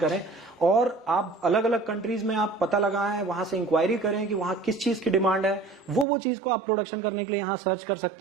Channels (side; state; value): left; drops out; at 6.1 s